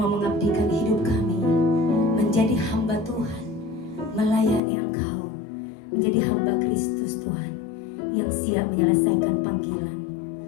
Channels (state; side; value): drops out; right; at 4.6 s